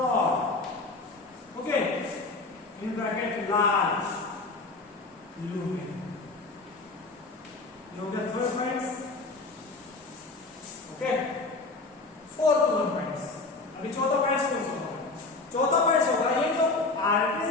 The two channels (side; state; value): right; quieter; 3.5 dB